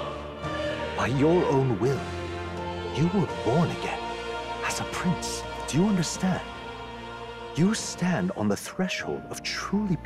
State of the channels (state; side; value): identical; both; correlation 1.00